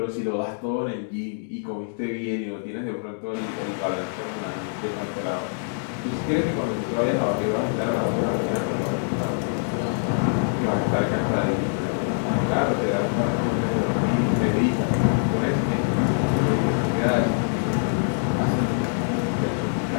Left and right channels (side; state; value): right; silent; digital silence